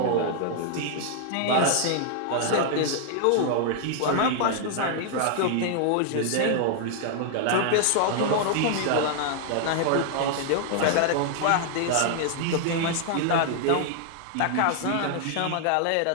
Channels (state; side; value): different; both; correlation 0.00